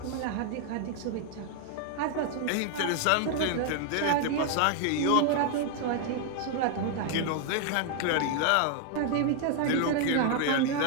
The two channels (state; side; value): different; both; correlation 0.00